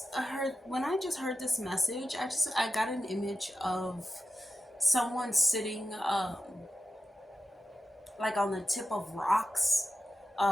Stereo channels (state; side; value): normal; both; correlation 0.91